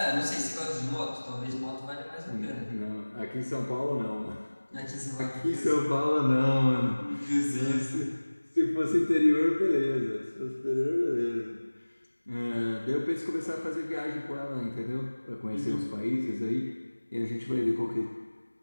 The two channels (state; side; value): inverted; both; correlation -1.00